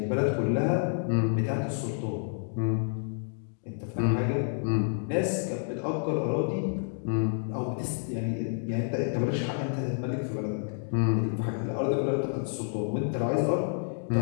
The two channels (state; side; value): silent; right; digital silence